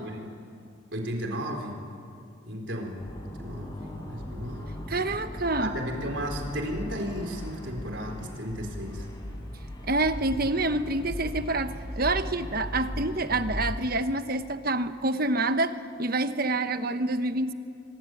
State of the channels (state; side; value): normal; both; correlation 0.24